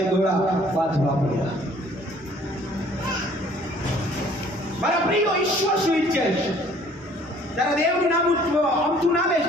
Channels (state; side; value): normal; both; correlation 0.56